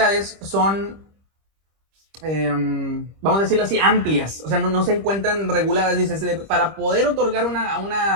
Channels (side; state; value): left; late; 25 ms